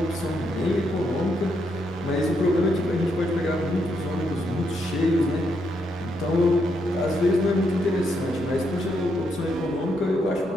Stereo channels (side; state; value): both; normal; correlation 0.78